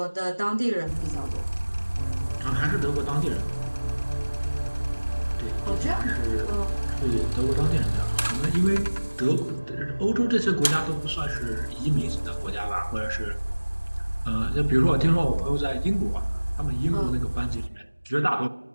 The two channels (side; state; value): both; inverted; correlation -1.00